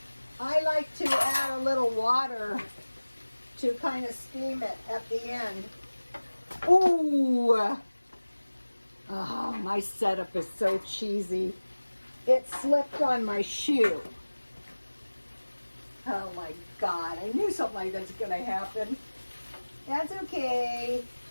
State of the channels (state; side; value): inverted; both; correlation -1.00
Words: I like to add a little water to kind of steam it at the end. Ooh! Oh, my setup is so cheesy. It slipped on my shoe. Oh my God, I knew something like that's going to happen. That's okay.